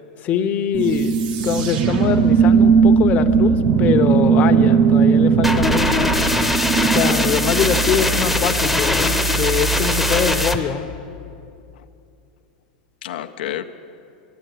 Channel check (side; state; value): both; normal; correlation 0.50